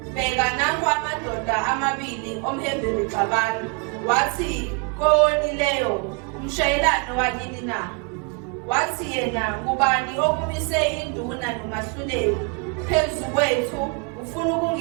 bheka nangu amadoda amabili omHebheru exabana wathi kowonileyo umshayelane wakini na wathi yena ngubani okumise induna nomahluleli phezu kwethu ufuna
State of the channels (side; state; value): left; quieter; 32.5 dB